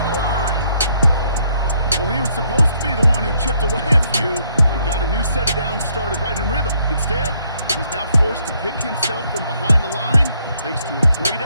the line. Well, he was supposed to be the one who chipped away a few and got a new set of downs started right in rhythm. Instead, he's now forced to pick himself from behind the line thanks to a great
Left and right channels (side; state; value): both; inverted; correlation -0.71